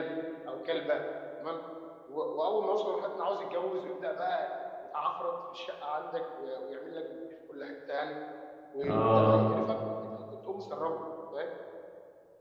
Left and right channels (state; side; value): identical; both; correlation 1.00